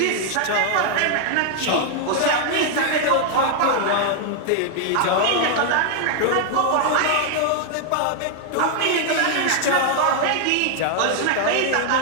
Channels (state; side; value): different; both; correlation 0.00